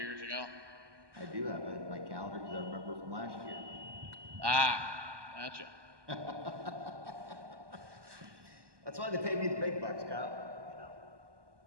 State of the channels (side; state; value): left; late; 1.2 ms